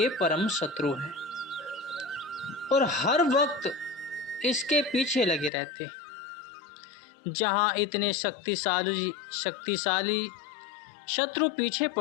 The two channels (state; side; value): drops out; right; at 5.5 s